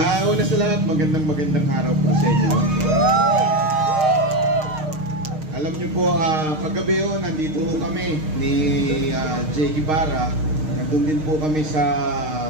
Una sa lahat, magandang araw po sa inyo. Alam niyo po, kagabi nandito kami ni Jay Ibarra. Nandun din po kami sa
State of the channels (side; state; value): left; late; 6.5 ms